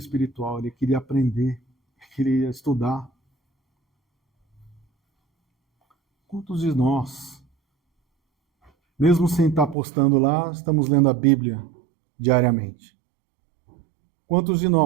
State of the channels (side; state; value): left; drops out; at 9.8 s